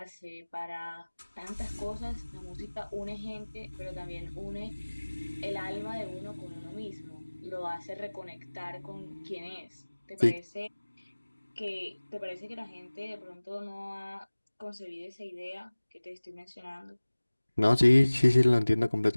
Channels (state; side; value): inverted; both; correlation -1.00